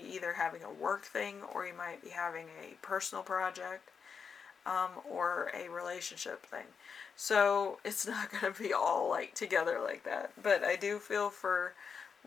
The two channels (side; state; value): right; quieter; 6.2 dB